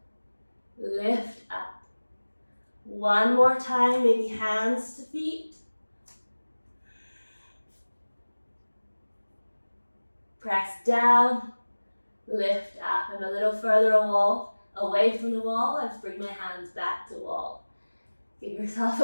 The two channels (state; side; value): inverted; both; correlation -1.00